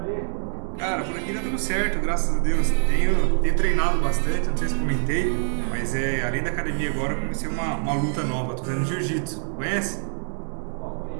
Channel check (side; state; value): left; silent; digital silence